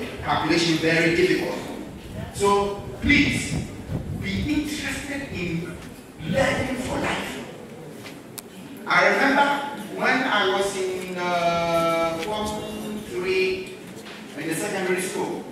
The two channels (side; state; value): both; identical; correlation 1.00